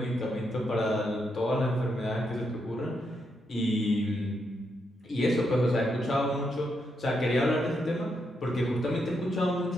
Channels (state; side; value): normal; both; correlation 0.81